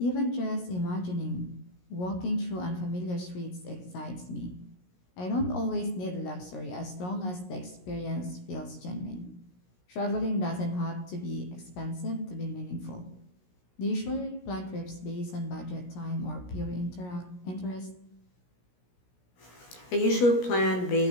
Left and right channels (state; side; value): late; right; 17 ms